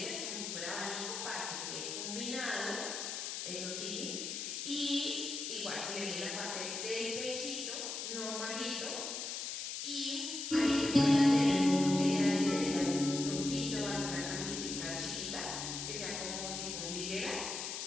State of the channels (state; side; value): noise; left; hiss, 4 dB below the sound